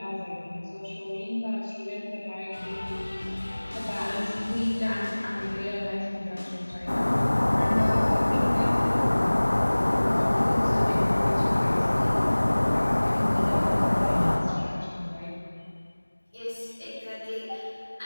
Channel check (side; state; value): both; inverted; correlation -1.00